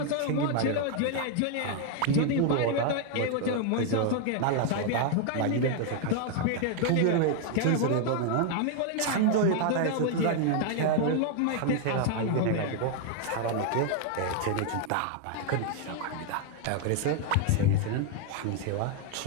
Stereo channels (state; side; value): different; both; correlation 0.00